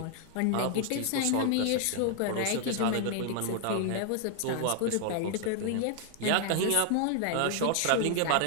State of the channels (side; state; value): both; different; correlation 0.00